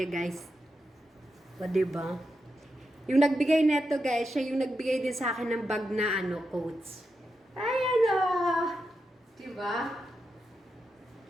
guys. O diba? Yung nagbigay neto guys, siya yung nagbigay din sa akin ng bag na coats. Ayan o! Diba?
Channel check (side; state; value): both; normal; correlation 0.87